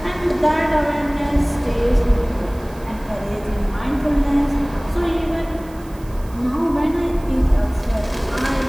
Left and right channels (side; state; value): right; noise; hiss, 25 dB below the sound